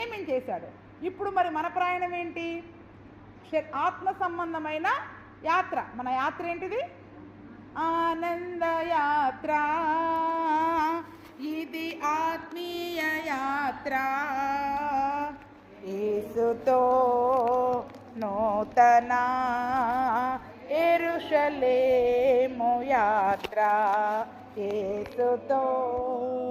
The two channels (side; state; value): both; identical; correlation 1.00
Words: ఇప్పుడు మరి మన ప్రయాణం ఏంటి? ఆత్మ సంబంధమైన యాత్ర. మన యాత్ర ఏంటిది? ఆనంద యాత్ర. ఇది ఆత్మీయ యాత్ర. యేసుతో నూతన యెరూషలేము యాత్ర. యేసుతో